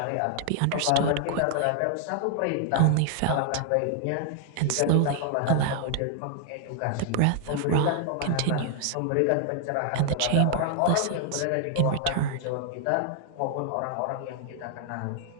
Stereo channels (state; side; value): different; both; correlation 0.00